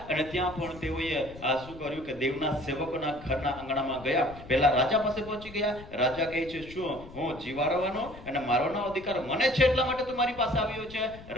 અને ત્યાં પણ તેઓએ શું કર્યું કે દેવના સેવકોના ઘરના આંગણામાં ગયા. પહેલા રાજા પાસે પહોંચી ગયા. રાજા કહે છે, શું હું જીવાડવાનો અને મારવાનો અધિકાર મને છે એટલા માટે તું મારી પાસે આવ્યો છે?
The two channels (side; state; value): left; noise; rumble, 17 dB below the sound